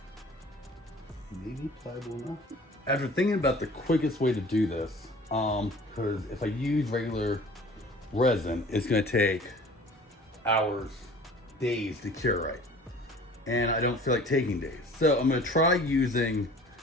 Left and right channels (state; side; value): normal; both; correlation 0.47